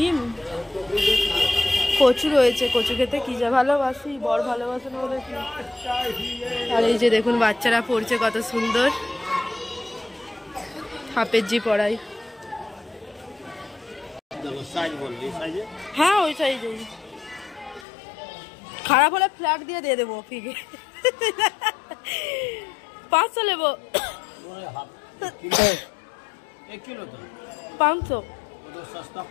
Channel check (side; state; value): right; drops out; at 17.9 s